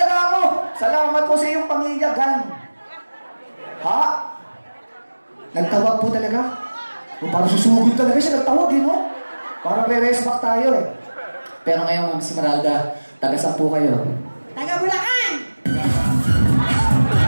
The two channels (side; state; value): both; inverted; correlation -1.00